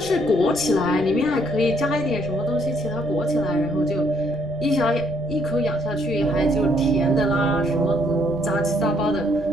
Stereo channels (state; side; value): noise; right; rumble, 16 dB below the sound